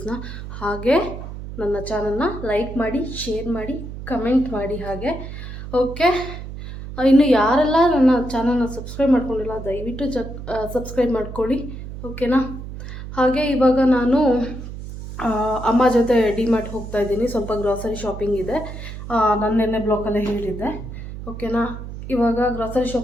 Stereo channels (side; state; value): right; noise; hum, 10 dB below the sound